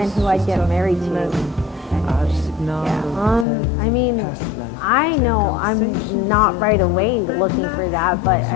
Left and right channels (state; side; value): drops out; right; at 3.5 s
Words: who I'd get married to. Yeah. I mean, I know I'm not right away looking for that, but